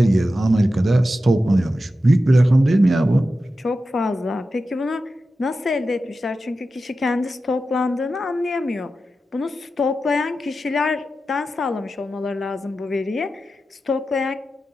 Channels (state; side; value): normal; both; correlation 0.92